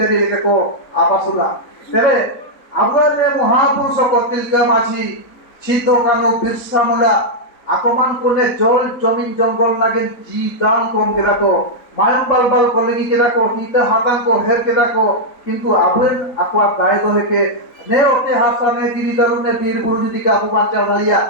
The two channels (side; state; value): right; late; 3.9 ms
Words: लेके को आबासुला तबे अब रे महापुरुष को तिलका माझी छितो कानो बिरसा मुला आकमान कोने जल जमीन जंगल लागे जी दान कम केरा को मायम बाल कलेगी केरा को हिते हातां को हेर केरा को किंतु आबेन आकवा गाय दो के ने ओते हासा ने दिरी दारु ने वीर बुरु जदि का अपु बांचा भाइया